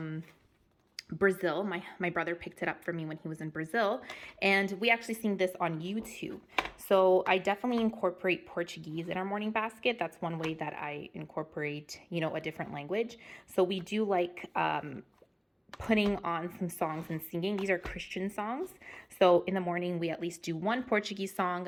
Brazil. My brother picked it up for me when he was in Brazil, and we actually sing this on YouTube. So I definitely incorporate Portuguese in our morning basket. That's one way that I incorporate, a different language. So we do like putting on some songs and singing. These are Christian songs. So in the morning, we at least do one Portuguese song,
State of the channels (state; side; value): identical; both; correlation 1.00